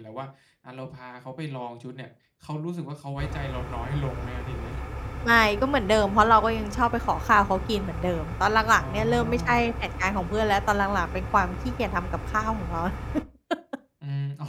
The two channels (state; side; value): identical; both; correlation 1.00